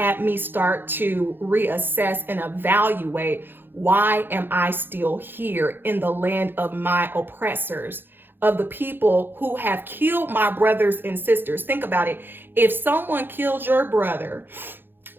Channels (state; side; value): late; left; 0.099 ms